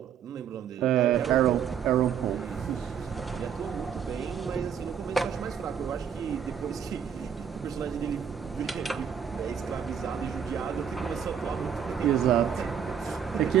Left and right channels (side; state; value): left; quieter; 8.1 dB